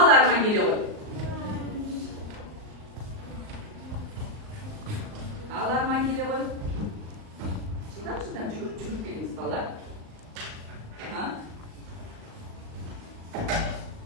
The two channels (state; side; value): late; left; 38 ms